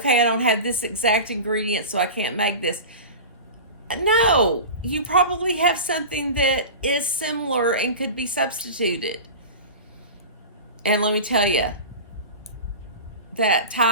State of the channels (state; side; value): inverted; both; correlation -0.31